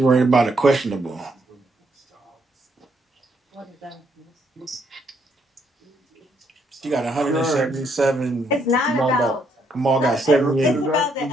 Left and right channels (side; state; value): both; normal; correlation 0.73